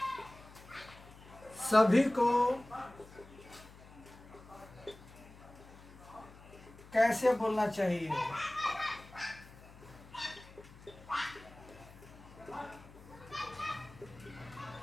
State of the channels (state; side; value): noise; left; hum, 20 dB below the sound